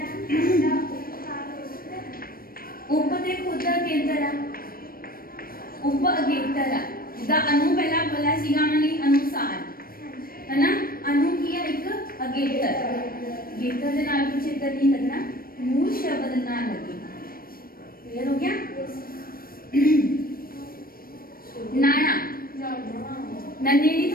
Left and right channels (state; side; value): late; right; 0.43 ms